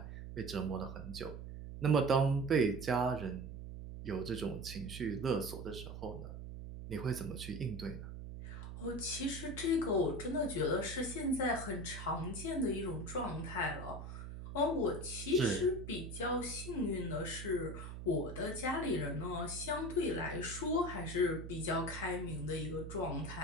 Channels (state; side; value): noise; right; hum, 9 dB below the sound